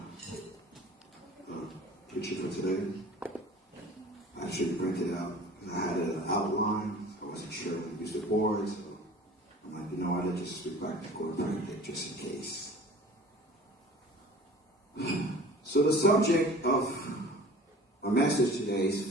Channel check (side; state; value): both; normal; correlation 0.45